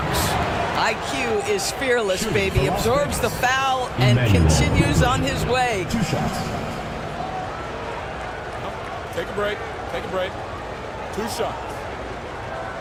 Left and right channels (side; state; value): both; identical; correlation 1.00